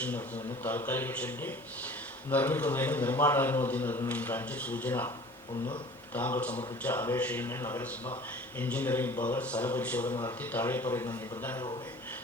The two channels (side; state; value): both; normal; correlation 0.45